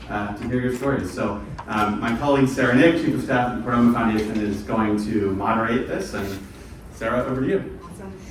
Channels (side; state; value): both; identical; correlation 1.00